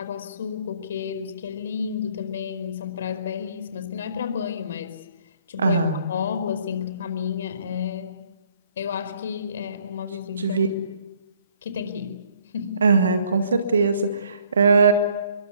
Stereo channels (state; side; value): inverted; both; correlation -0.62